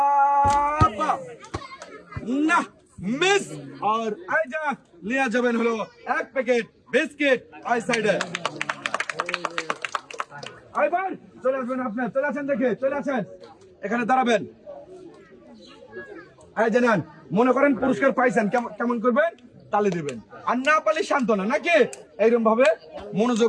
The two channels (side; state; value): both; identical; correlation 1.00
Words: আপা না মিস। আর এই যা নিয়ে যাবেন হলো 1 প্যাকেট বিস্কিট এই সাইডে। এবার চলে আসবেন আপনি, চলে আসেন দেখে চলে আসেন, এখানে দাঁড়াবেন। এই যে নেন, মনে করেন পুরস্কার পাইছেন, কেমন করবেন? তালি দিবেন। আর না পারলে সান্ত্বনা নাকি? এইরকম ভাবে